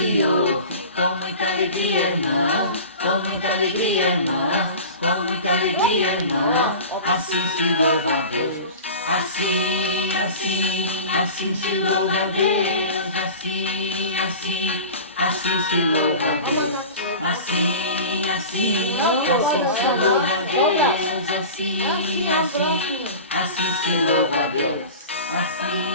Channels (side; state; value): both; inverted; correlation -0.35